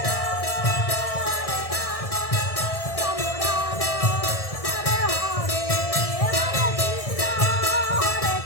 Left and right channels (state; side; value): late; right; 1.6 ms